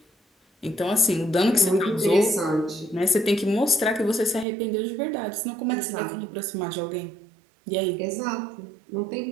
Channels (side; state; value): left; drops out; at 4.5 s